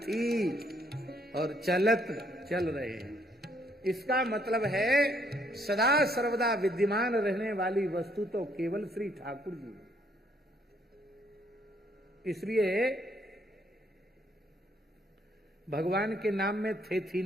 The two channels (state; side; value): normal; both; correlation 0.69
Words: और चलत चल रहे हैं। इसका मतलब है सदा सर्वदा विद्यमान रहने वाली वस्तु तो केवल श्री ठाकुर जी। इसलिए भगवान के नाम में थे थी